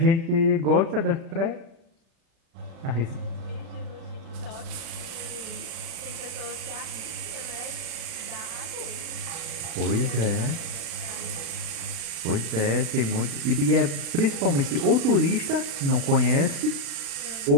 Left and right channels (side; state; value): left; late; 36 ms